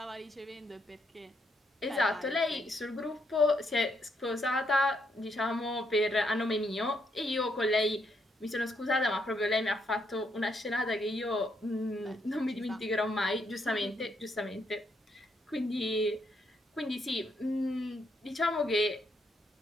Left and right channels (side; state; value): both; normal; correlation 0.76